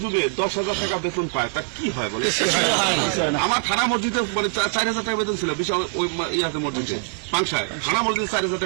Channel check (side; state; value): left; silent; 63 dB below the other